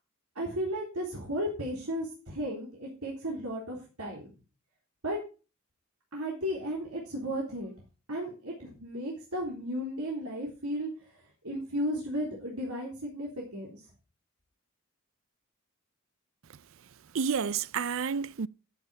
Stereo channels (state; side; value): normal; both; correlation 0.12